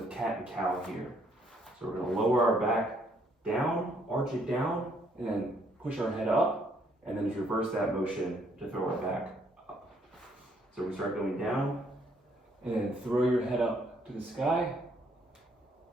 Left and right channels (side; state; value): both; normal; correlation 0.68